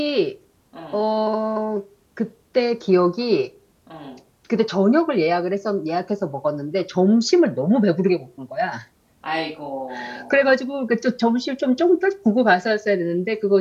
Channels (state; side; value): identical; both; correlation 1.00